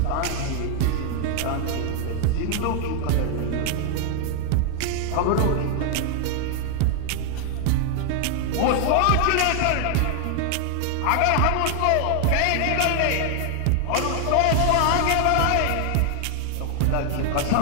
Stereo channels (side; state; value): both; different; correlation 0.00